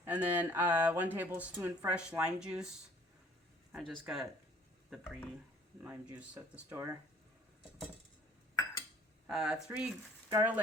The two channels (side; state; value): both; normal; correlation 0.56